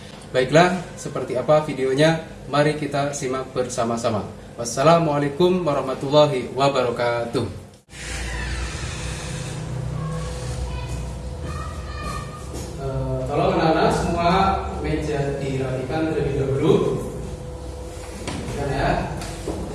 Baiklah, seperti apa videonya? Mari kita simak bersama-sama. Wassalamualaikum warahmatullahi wabarakatuh. Tolong anak-anak semua meja dirapikan terlebih dahulu. Ya.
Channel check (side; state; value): both; identical; correlation 1.00